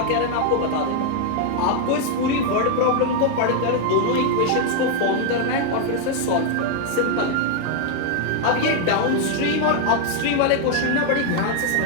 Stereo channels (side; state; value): both; different; correlation 0.00